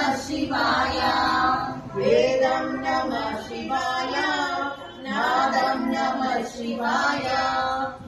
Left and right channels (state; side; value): identical; both; correlation 1.00